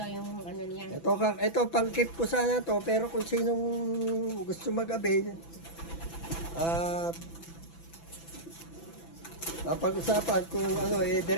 yung ano niya. Ito pang-keep ko sana to, pero kung sinong gusto mag-avail, napag-usapan kung ano,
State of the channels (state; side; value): late; right; 6.0 ms